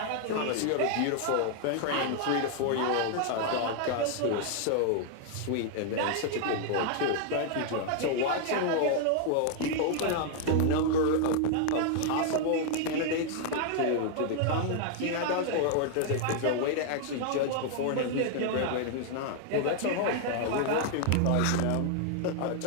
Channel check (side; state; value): both; different; correlation 0.00